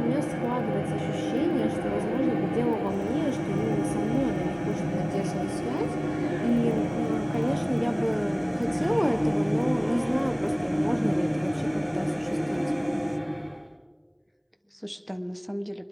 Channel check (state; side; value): identical; both; correlation 1.00